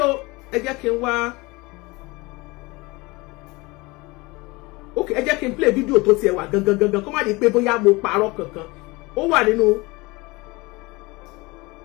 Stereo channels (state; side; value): quieter; right; 23.9 dB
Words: ẹ jẹ́ kí n wá. ok ẹ jẹ́ kí n play video tó tiẹ̀ wà gangan kó má di pé bóyá mo parọ́ kankan ó wà nínú